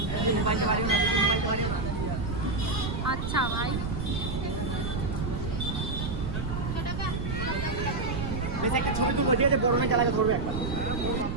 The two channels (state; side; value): noise; right; rumble, 3 dB below the sound